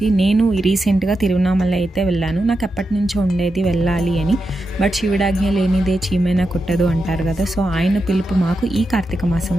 నేను రీసెంట్గా తిరువన్నామల అయితే వెళ్ళాను. నాకు ఎప్పటి నుంచో ఉండేది వెళ్ళాలి అని. బట్ శివుడాజ్ఞ లేనిదే చీమైనా కుట్టదు అంటారు కదా. సో ఆయన పిలుపు మాకు ఈ కార్తీక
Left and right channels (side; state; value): both; normal; correlation 0.88